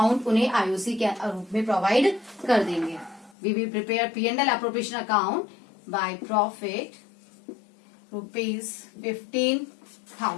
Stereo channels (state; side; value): drops out; right; at 3.4 s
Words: उन्हें आईओसी के रूप में प्रोवाइड कर देंगे। We will prepare P&L appropriation account by profit rupees